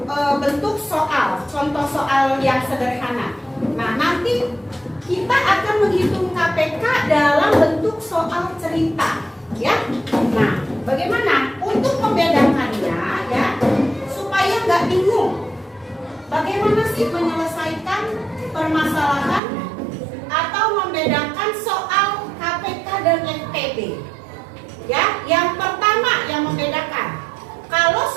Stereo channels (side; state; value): left; drops out; at 19.4 s